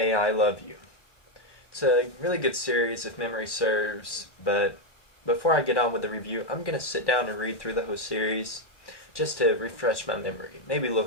Love You. It's a really good series if memory serves, but before I get on with the review, I'm going to sit down and read through the whole series just to refresh my memory. Maybe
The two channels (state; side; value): late; right; 1.1 ms